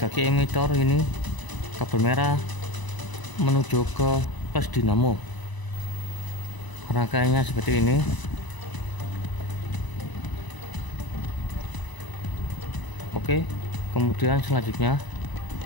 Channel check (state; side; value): late; right; 1.0 ms